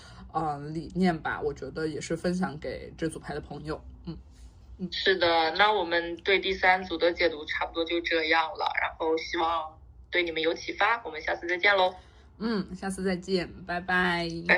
理念吧，我觉得也是分享给这组牌的朋友。是的，那我们对第3组的解读差不多就这样了，然后希望对你们有启发，我们下次再见喽。下次再见，拜拜，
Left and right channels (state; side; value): identical; both; correlation 1.00